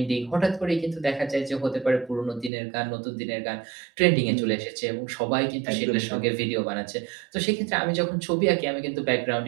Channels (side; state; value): left; drops out; at 2.5 s